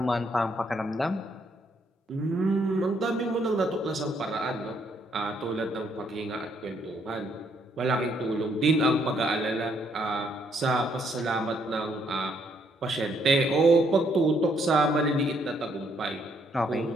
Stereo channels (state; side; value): normal; both; correlation 0.71